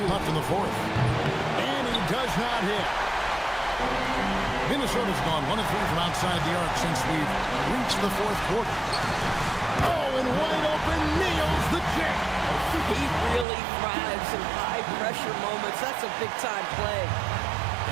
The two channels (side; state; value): left; drops out; at 13.5 s